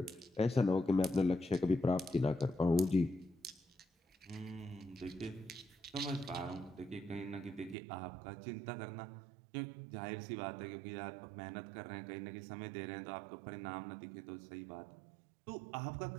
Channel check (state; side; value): drops out; left; at 7.8 s